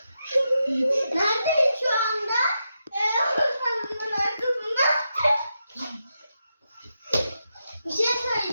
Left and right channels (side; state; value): both; inverted; correlation -0.86